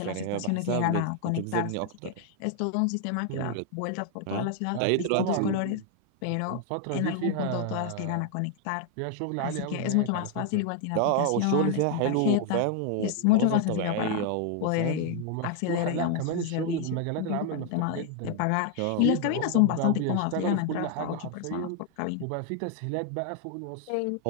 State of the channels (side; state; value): both; different; correlation 0.00